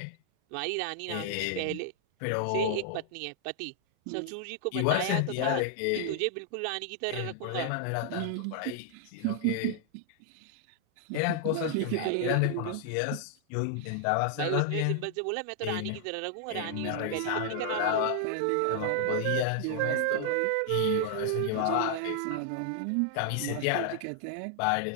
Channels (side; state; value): both; different; correlation 0.00